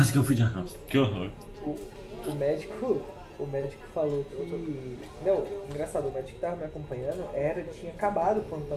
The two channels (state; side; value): identical; both; correlation 1.00